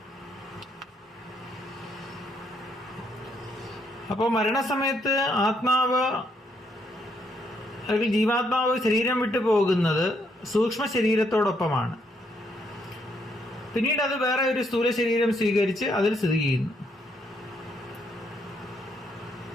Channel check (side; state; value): both; normal; correlation 0.73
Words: അപ്പോൾ മരണസമയത്ത് ആത്മാവ് അല്ലെങ്കിൽ ജീവാത്മാവ് ശരീരം വിട്ടു പോകുന്നത് സൂക്ഷ്മ ശരീരത്തോടൊപ്പമാണ്. പിന്നീട് അത് വേറെ ഒരു സ്ഥൂല ശരീരം സ്വീകരിച്ച് അതിൽ സ്ഥിതി ചെയ്യുന്നു.